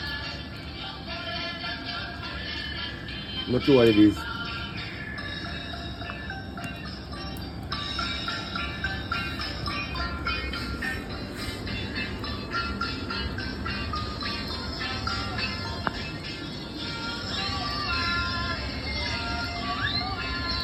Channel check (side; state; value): both; identical; correlation 1.00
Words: Not sure what it is.